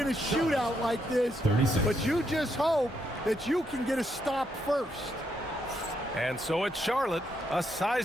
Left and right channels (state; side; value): normal; both; correlation 0.78